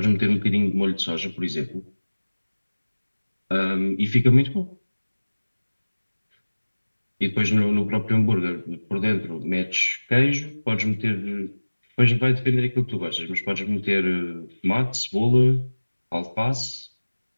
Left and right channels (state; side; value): inverted; both; correlation -1.00